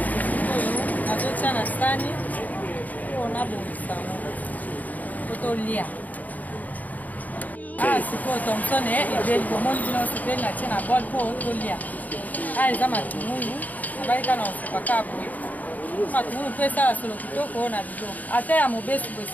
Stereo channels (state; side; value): late; right; 0.077 ms